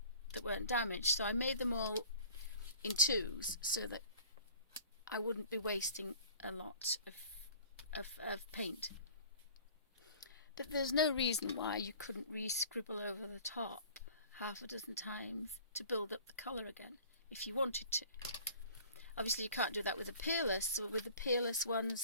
weren't damaged. So I made them all in twos so that I wouldn't be wasting a lot of paint. But there's no reason why you couldn't re-scribble over the top half a dozen times to build up the colour again if you wanted to. Obviously you can't do that with a peerless, so with the peerless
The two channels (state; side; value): inverted; both; correlation -0.46